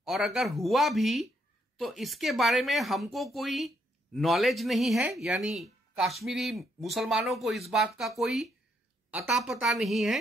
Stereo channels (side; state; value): both; normal; correlation 0.74